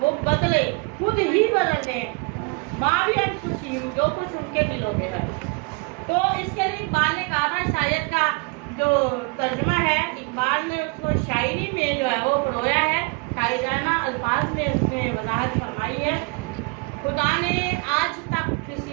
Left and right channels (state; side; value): quieter; left; 30.5 dB